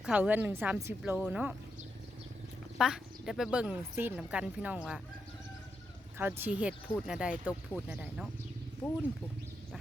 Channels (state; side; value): normal; both; correlation 0.84